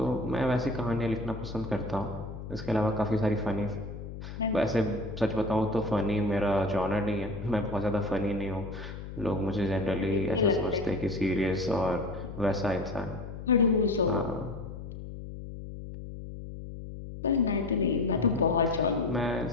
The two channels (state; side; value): noise; left; hum, 10 dB below the sound